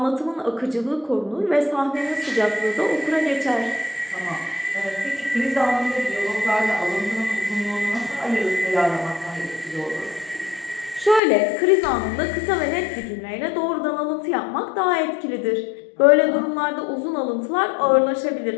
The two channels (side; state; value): right; drops out; at 11.2 s